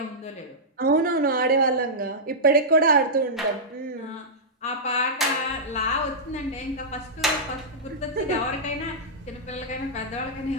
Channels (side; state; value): both; normal; correlation -0.12